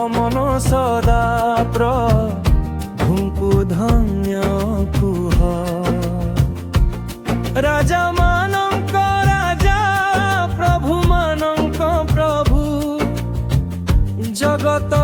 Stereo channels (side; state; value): both; identical; correlation 1.00